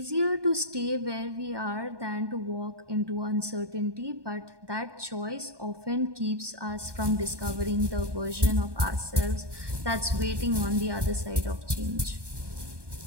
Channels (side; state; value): left; late; 1.2 ms